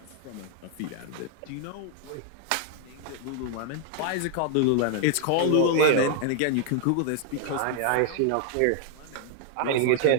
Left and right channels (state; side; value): different; both; correlation 0.00